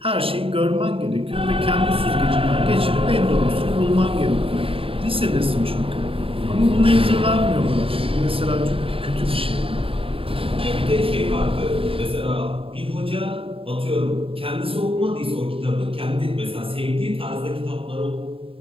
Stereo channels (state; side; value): late; left; 0.27 ms